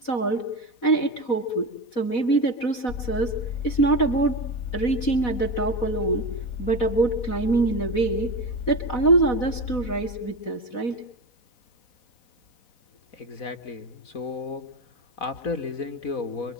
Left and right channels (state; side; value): late; right; 4.1 ms